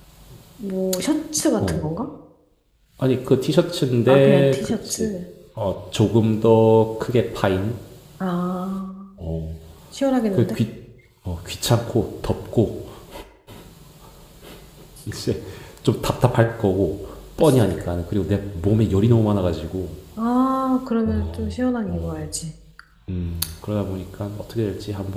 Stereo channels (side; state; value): both; identical; correlation 1.00